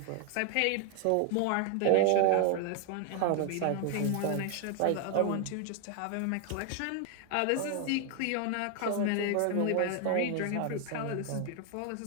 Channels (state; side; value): different; both; correlation 0.01